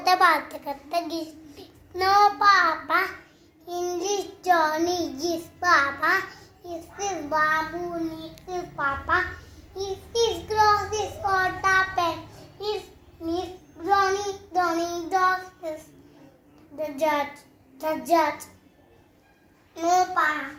baat karte no Papa English Johnny is Papa is this Babu is Papa is this cross is water pen is Miss Donny dog is the judge no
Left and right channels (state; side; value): identical; both; correlation 1.00